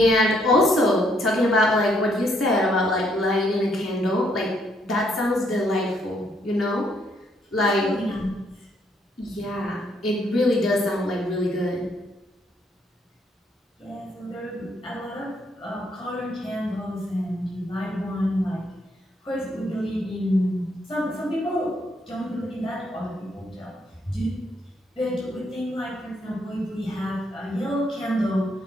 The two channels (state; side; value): normal; both; correlation 0.72